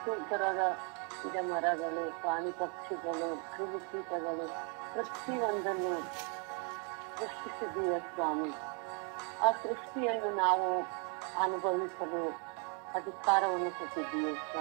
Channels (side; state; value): left; quieter; 38.3 dB